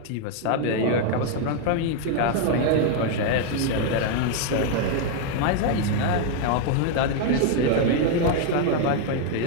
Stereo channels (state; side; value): different; both; correlation 0.00